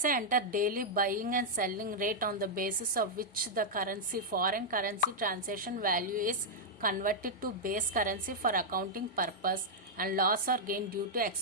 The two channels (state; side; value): normal; both; correlation -0.06